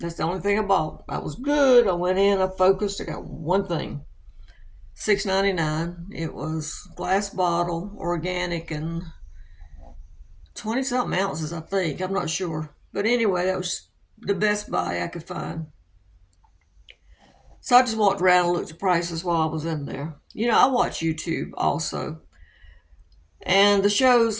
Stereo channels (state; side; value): identical; both; correlation 1.00